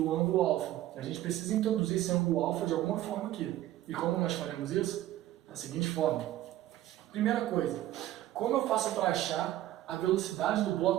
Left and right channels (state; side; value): quieter; left; 14.0 dB